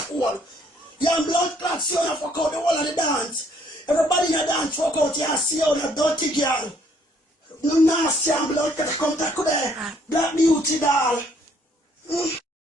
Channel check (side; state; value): both; normal; correlation 0.65